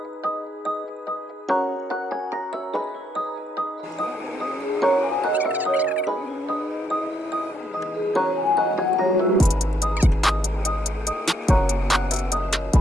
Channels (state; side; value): normal; both; correlation 0.77